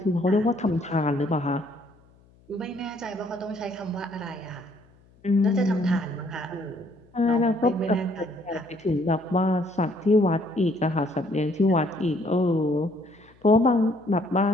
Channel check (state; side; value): noise; left; hum, 30 dB below the sound